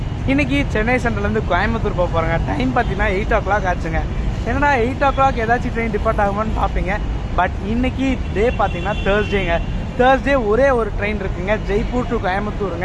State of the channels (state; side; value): identical; both; correlation 1.00